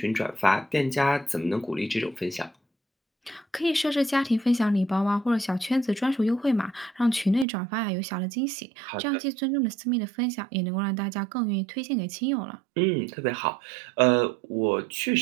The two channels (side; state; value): left; drops out; at 7.5 s